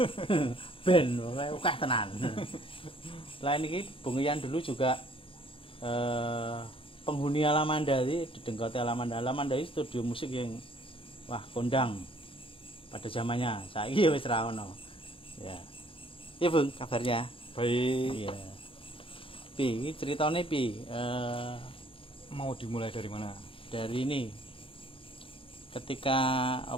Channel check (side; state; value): right; late; 0.26 ms